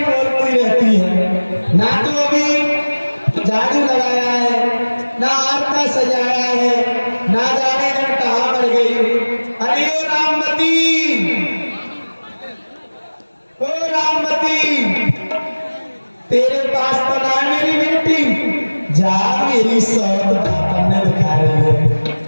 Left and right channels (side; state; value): both; inverted; correlation -1.00